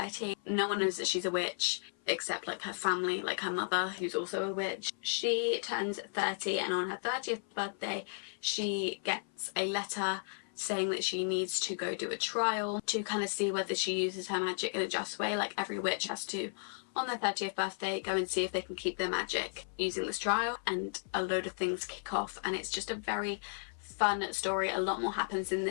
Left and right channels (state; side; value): silent; right; 55 dB below the other